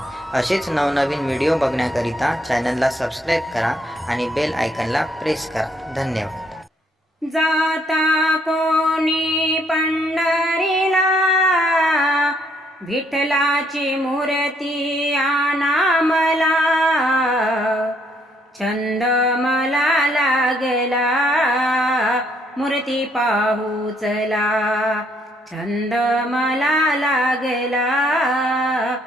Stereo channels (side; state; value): both; normal; correlation 0.69